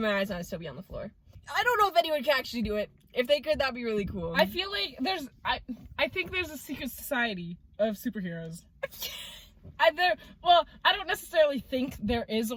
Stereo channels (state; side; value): identical; both; correlation 1.00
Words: my eyes, and I'd still be on the floor. I don't know if anyone can actually do it. If they could, that'd be really cool. I feel like I think there's a secret society of superheroes. I don't necessarily think there is